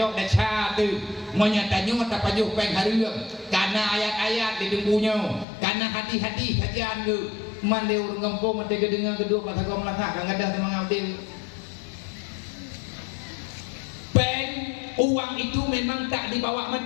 dah cha tu moya tanyo tak pajuh peng hareum karena ayat-ayat di dengkunya karena hati-hati kajian tu man leu ngempong mate gedengang kedua mata kau melangkah kang gadah memang abdil peng uang itu memang tak dibawa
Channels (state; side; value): drops out; right; at 5.5 s